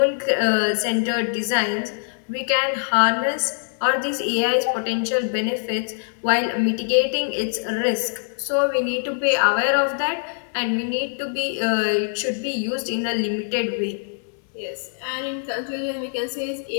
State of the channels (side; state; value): right; silent; digital silence